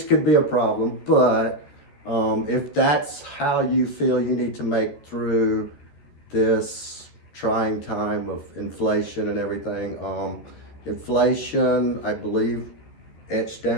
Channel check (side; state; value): right; late; 14 ms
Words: could be a problem, but if that's how you feel you need to make through this trying time of inflation and everything, inflation, I believe, etched